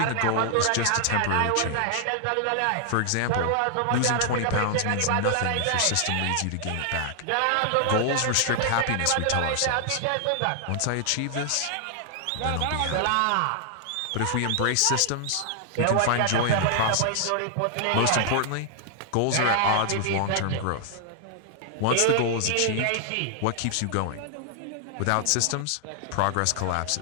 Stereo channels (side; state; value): both; different; correlation 0.00